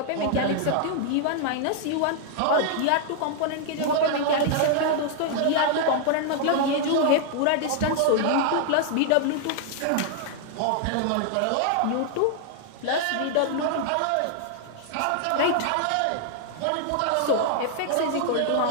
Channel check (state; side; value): different; both; correlation 0.00